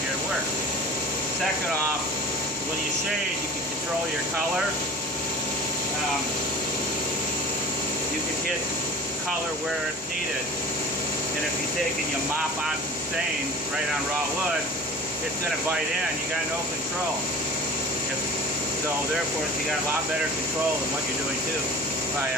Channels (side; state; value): both; normal; correlation 0.40